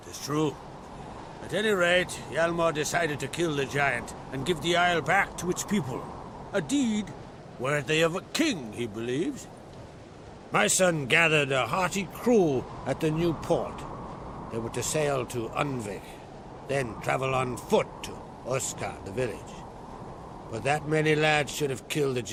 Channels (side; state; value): both; identical; correlation 1.00